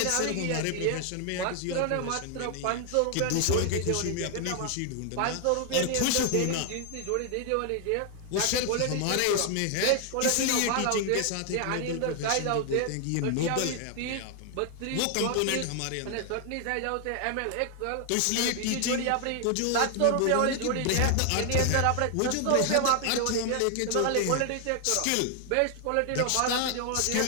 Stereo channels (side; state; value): both; different; correlation 0.00